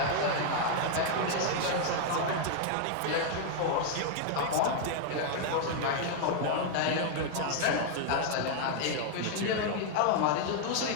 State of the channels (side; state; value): both; different; correlation 0.00